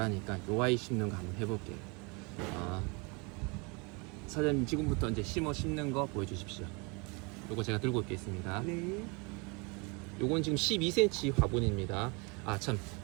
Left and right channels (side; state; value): left; quieter; 30.1 dB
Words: 요 아이 심는 거 한번 해볼게요. 사장님, 지금부터 이제 심는 거 보여주십시오. 요거 제가 들고 있겠습니다. 네. 요건 지금 12cm 화분입니다. 참,